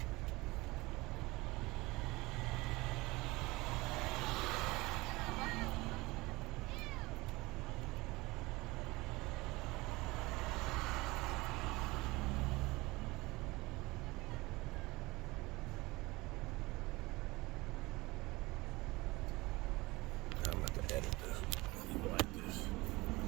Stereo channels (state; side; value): quieter; left; 21.8 dB